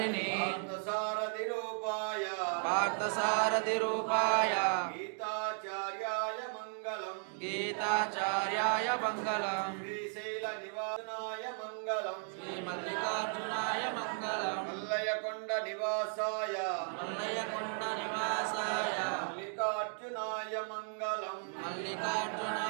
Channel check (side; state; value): left; silent; 54 dB below the other